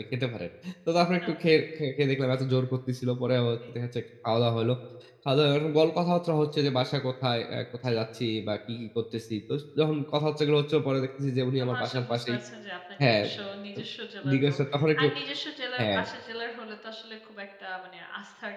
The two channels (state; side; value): identical; both; correlation 1.00